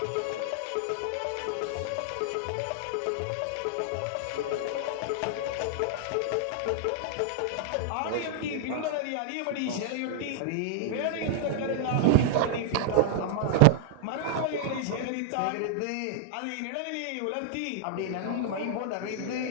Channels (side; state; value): both; different; correlation -0.01